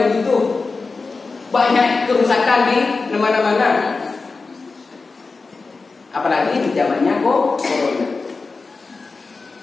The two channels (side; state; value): right; quieter; 4.1 dB